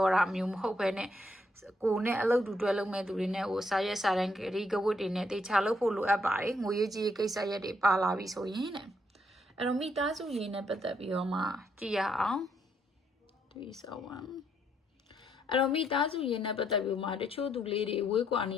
ာတာမျိုးမဟုတ်ပဲနဲ့ကိုနဲ့အလုပ်တူတွဲလုပ်မဲ့သူတွေနဲ့ဟိုစာရက်စာတမ်းဂရီကဝတ်တွေနဲ့တေချာလုပ်ဖို့လိုအပ်ပါတယ်ငွေရေးကြီးကိစ္စရက်တွေပါလာပြီဆိုရင်တဲ့အဲ့တော့မိသားစုရင်းနဲ့ပတ်သက်ပြီးတော့မှကြည့်ရအောင်371အဲ့တော့မိသားစုရင်းနဲ့ပတ်သက်ပြီးမှတချို့သူလေးတွေဝေးကွာနေ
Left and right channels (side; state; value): both; normal; correlation 0.74